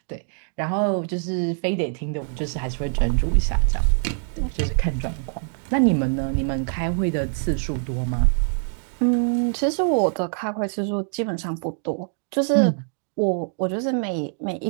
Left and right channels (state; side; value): silent; left; 63 dB below the other